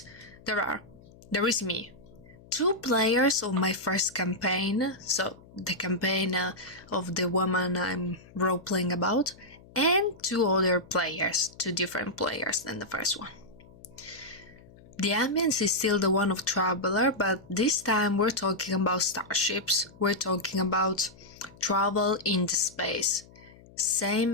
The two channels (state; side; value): noise; left; hum, 23 dB below the sound